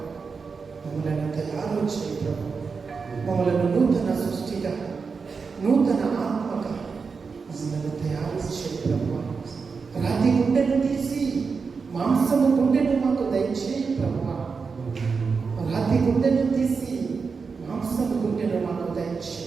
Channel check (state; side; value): quieter; left; 5.1 dB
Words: మమ్మల్ని తయారు చేయ ప్రభు. మమ్మల్ని నూతన సృష్టిగా, నూతన ఆత్మగా మమ్మల్ని తయారు చేయ ప్రభు. రాతి గుండెను తీసి మాంసము గుండెను మాకు దయచేయి ప్రభు. రాతి గుండెను తీసి మాంసము గుండెను మాకు